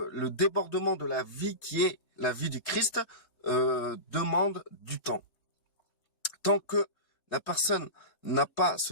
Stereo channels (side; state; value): right; late; 3.2 ms